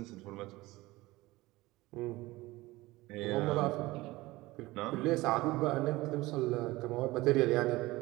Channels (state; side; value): quieter; left; 19.7 dB